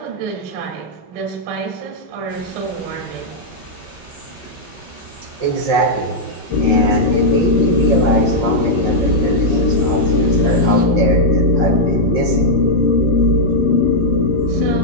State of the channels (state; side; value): late; left; 5.5 ms